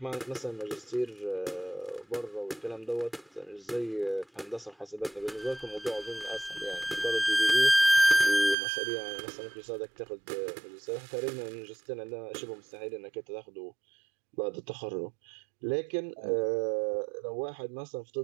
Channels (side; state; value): left; drops out; at 8.6 s